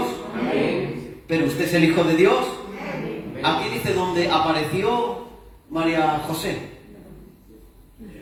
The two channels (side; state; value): both; identical; correlation 1.00